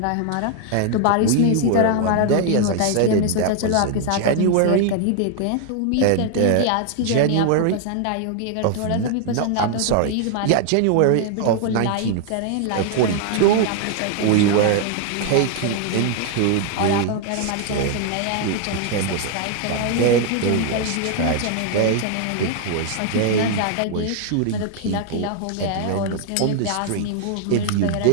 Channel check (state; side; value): different; both; correlation 0.00